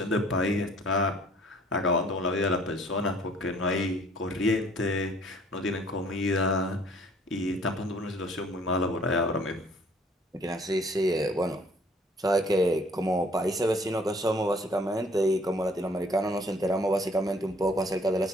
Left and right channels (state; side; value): normal; both; correlation 0.57